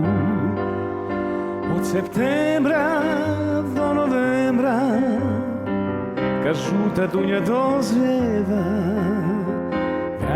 Od septembra do novembra kad žuta dunja dozrijeva,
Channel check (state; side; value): identical; both; correlation 1.00